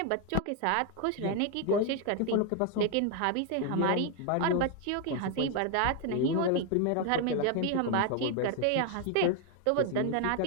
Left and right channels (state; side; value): different; both; correlation 0.01